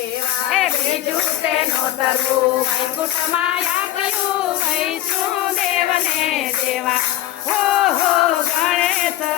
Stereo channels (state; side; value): quieter; right; 13.4 dB